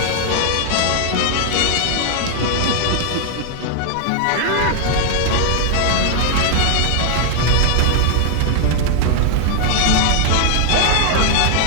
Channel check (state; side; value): different; both; correlation 0.00